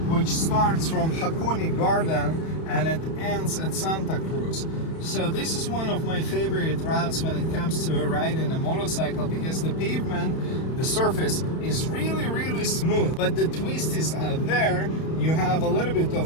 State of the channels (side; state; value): right; late; 31 ms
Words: which starts from Hakone Garden and it ends at Santa Cruz. So this is one of my favorite routes when it comes to riding a motorcycle, because the pavement, the surface is really smooth, but the twisties are there. You have a little bit